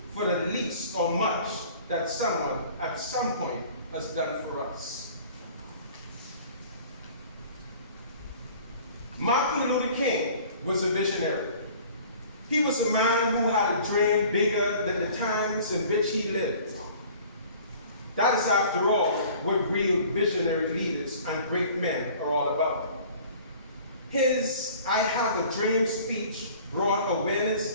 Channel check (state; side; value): inverted; both; correlation -0.48